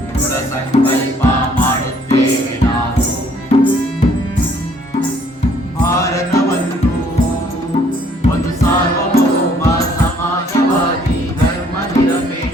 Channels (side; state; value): both; normal; correlation 0.62